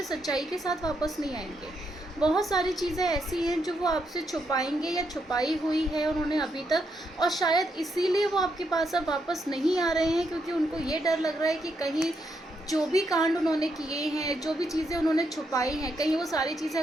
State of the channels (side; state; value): both; normal; correlation 0.79